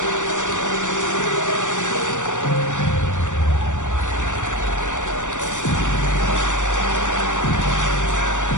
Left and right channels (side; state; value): right; late; 0.86 ms